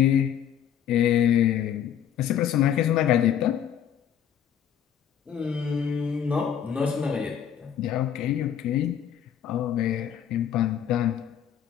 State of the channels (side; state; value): right; quieter; 9.4 dB